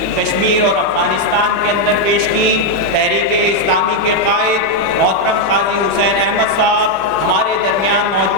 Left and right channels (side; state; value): both; normal; correlation 0.01